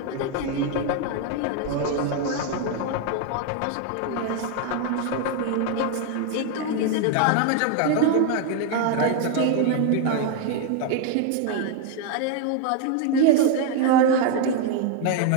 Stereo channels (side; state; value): both; different; correlation 0.01